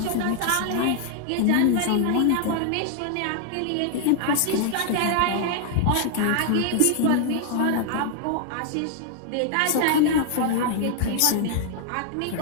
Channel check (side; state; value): both; different; correlation 0.00